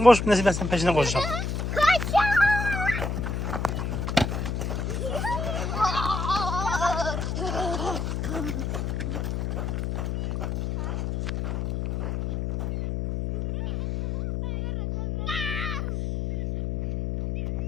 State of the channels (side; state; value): left; noise; hum, 2 dB below the sound